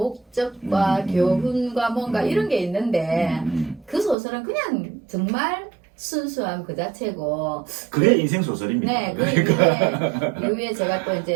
교훈과 뭔가 이런 게 있는데 그 소설은 그냥 정말 순수함 그 자체고 그게 인생 소설입니다. 네, 그러니까. 이후에 제가 또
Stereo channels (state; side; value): drops out; left; at 4.2 s